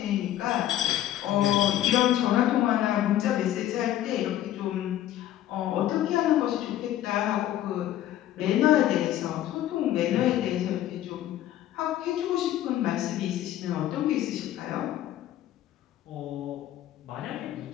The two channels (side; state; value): right; quieter; 12.8 dB